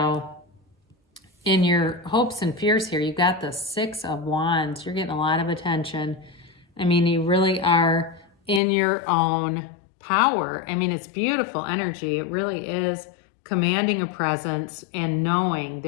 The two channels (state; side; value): drops out; right; at 8.6 s